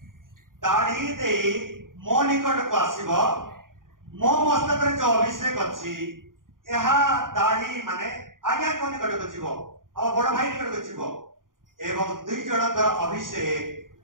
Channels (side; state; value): left; late; 0.90 ms